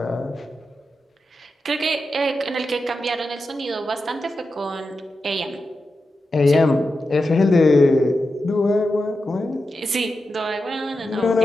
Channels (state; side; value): normal; both; correlation 0.90